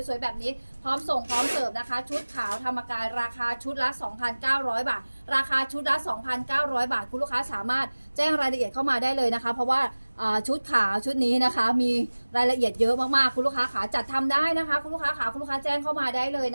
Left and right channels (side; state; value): both; inverted; correlation -1.00